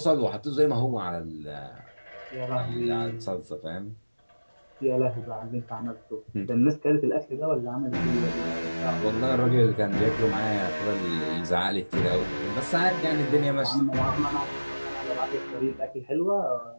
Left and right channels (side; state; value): both; inverted; correlation -1.00